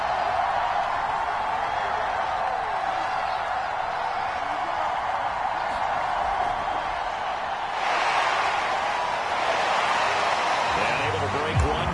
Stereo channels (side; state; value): both; identical; correlation 1.00